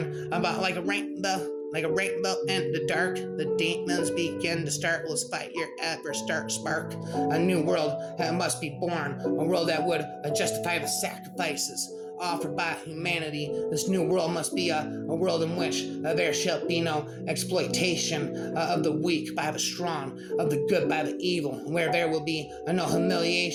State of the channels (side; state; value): both; identical; correlation 1.00